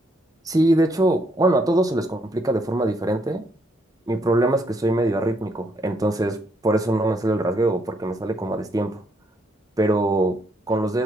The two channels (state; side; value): normal; both; correlation 0.72